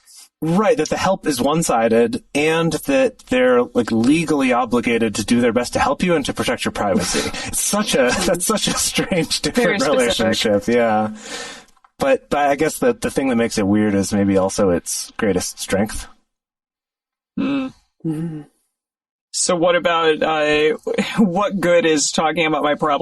Right, that the help is one-sided, and that they're like legally obligated to do their best to help you and to protect your privacy. That's such a strange, different relationship. Yeah, but I guess the thing that makes it weird is maybe also its greatest strength. So what about what good is talking about my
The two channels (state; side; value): identical; both; correlation 1.00